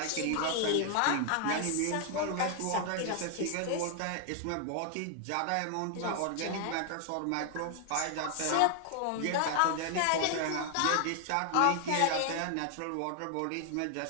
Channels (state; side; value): different; both; correlation 0.00